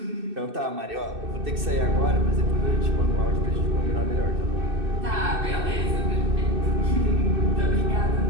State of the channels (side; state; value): left; late; 2.6 ms